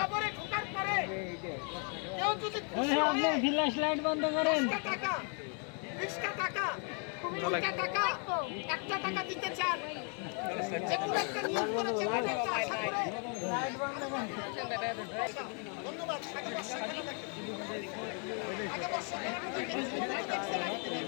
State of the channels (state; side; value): quieter; right; 39.2 dB